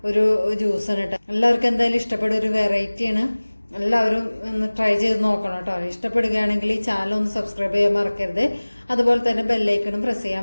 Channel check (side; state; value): both; inverted; correlation -1.00